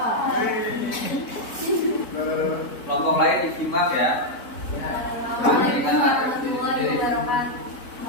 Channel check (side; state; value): right; late; 4.1 ms